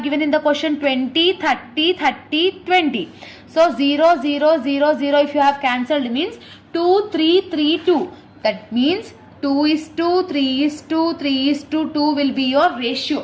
given in the question? 20, 30, 30, 20. So 0, 0, 0, 0 if you have cancelled means 2, 3, 3, 2. That means 2 is to 3 is to 3 is to 2 will be your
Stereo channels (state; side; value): identical; both; correlation 1.00